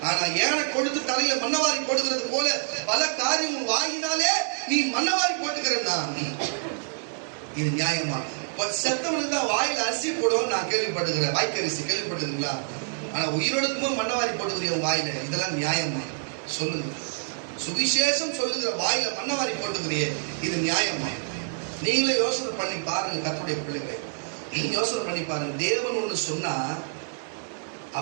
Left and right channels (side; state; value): left; silent; digital silence